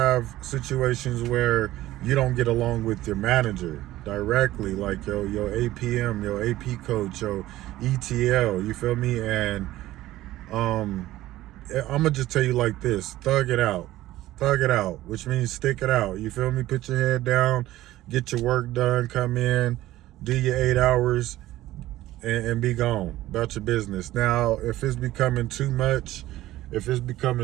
situations where you don't get along with your manager directly, like your APM, your AP coach, your ETL, you feel me? And I'm gonna just tell you like this: thug it out, which means stick it out. You feel me? Put your head down, get your work done, come in, do your 8 hours, and be gone about your business. Now, if it's becoming too much, if it's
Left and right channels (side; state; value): left; quieter; 15.6 dB